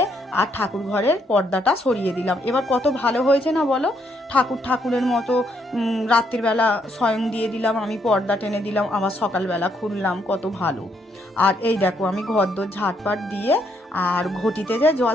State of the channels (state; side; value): normal; both; correlation 0.73